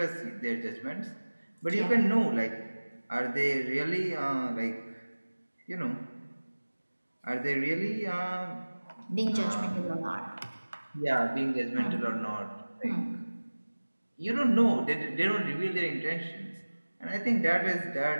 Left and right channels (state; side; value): inverted; both; correlation -1.00